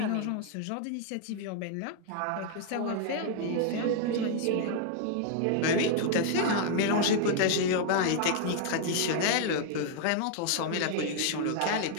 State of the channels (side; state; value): both; different; correlation 0.00